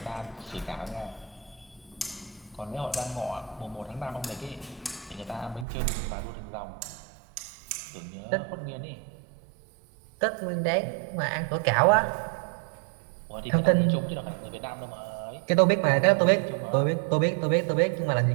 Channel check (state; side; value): drops out; left; at 5.7 s